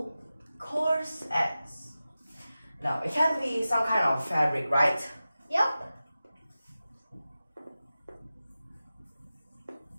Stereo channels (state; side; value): inverted; both; correlation -0.95